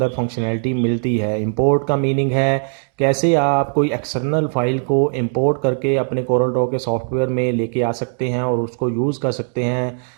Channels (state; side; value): silent; left; digital silence